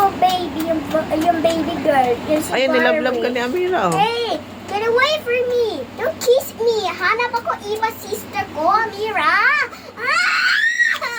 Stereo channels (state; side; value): identical; both; correlation 1.00